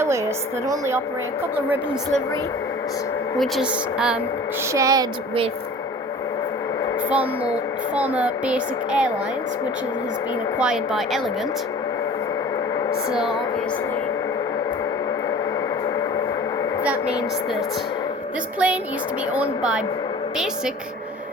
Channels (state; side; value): normal; both; correlation 0.43